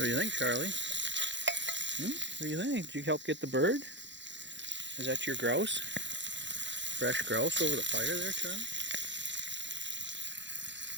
do you think, Charlie? What do you think? Did you help get the bird? Is that your grouse? Fresh grouse over the fire there, Charlie?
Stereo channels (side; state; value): left; late; 0.53 ms